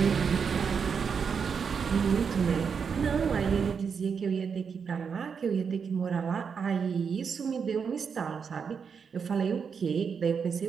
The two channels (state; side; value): quieter; left; 6.3 dB